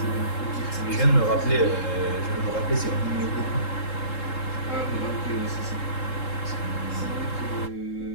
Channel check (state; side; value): late; right; 3.7 ms